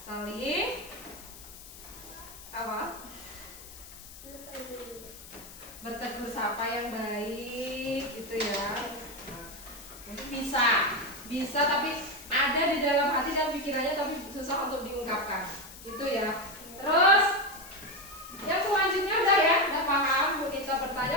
Saling apa? Bertegur sapa yang baik gitu ya. Nah, mungkin bisa tapi ada di dalam hati dan pikirannya tapi susah untuk diungkapkan. Itu ya. Terus yang selanjutnya udah paham. Bu Nita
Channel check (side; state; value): left; noise; hiss, 16 dB below the sound